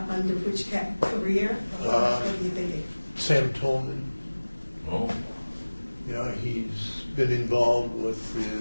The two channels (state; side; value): inverted; both; correlation -1.00